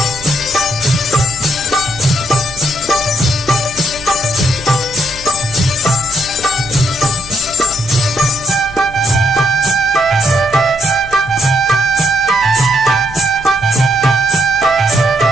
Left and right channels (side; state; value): both; normal; correlation 0.76